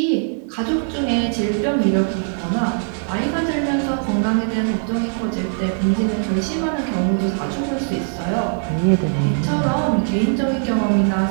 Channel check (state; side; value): silent; left; 64 dB below the other